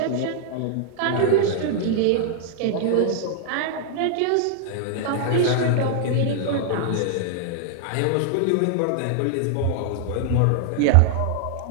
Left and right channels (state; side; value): different; both; correlation -0.01